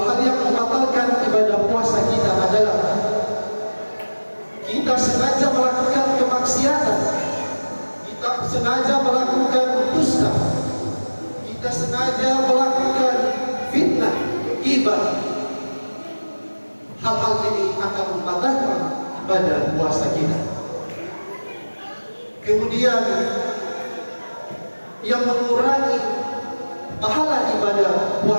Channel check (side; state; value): both; inverted; correlation -1.00